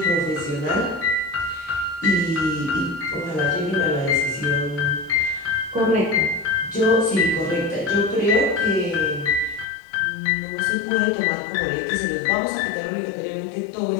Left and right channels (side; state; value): right; drops out; at 9.7 s